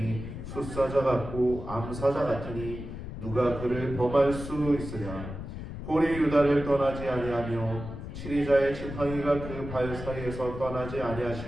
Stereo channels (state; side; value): noise; left; rumble, 9 dB below the sound